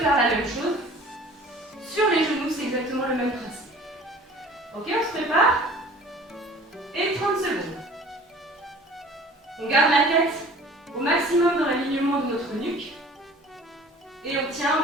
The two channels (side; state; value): both; normal; correlation 0.46